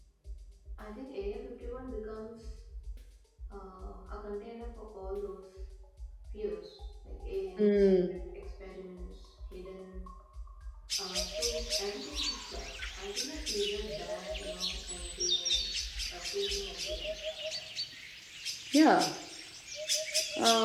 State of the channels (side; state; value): both; identical; correlation 1.00